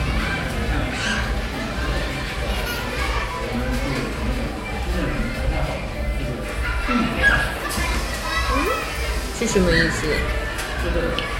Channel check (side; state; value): both; identical; correlation 1.00